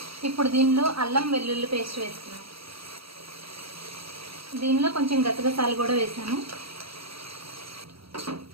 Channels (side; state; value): left; late; 0.75 ms